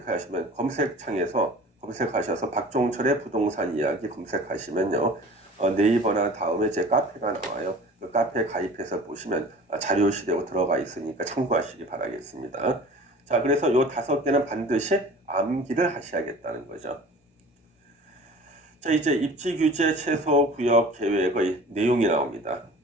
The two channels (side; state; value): both; normal; correlation 0.43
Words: 검색창에서 검색하셔서 박종철의 부동산 이야기 검색하시면요. 네이버나 다음에 제 카페가 나와요. 그 카페 가입해서 보시면 자료실에 들어가 있으니까 참고하시기 바라겠습니다. 자, 그래서 요 5개는 반드시 암기를 하셔야겠다는 거죠. 자, 이제 입지규제 최소 구역 계획의 내용이 나옵니다.